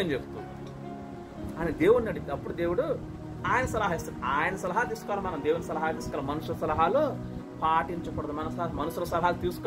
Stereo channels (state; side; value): identical; both; correlation 1.00